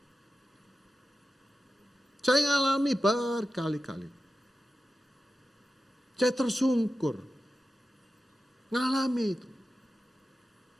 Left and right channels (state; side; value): normal; both; correlation 0.92